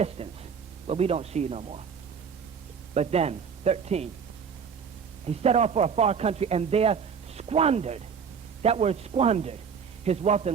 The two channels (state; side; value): quieter; left; 6.6 dB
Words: where we don't see you no more. But then, 13, he set off for a far country and there squandered. That word squandered, his wealth